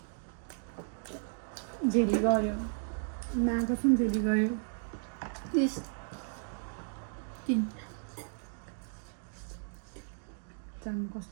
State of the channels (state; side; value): silent; left; digital silence